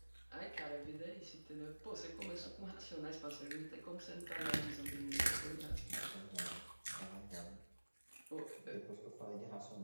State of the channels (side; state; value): both; inverted; correlation -1.00